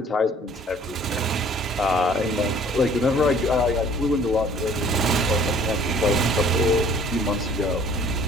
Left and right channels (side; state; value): both; normal; correlation 0.54